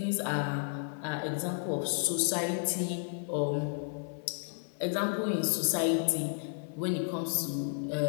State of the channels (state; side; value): silent; right; digital silence